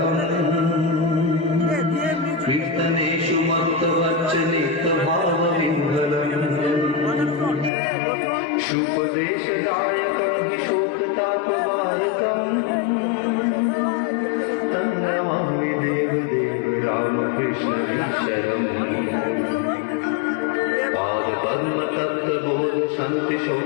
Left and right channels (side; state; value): right; drops out; at 7.7 s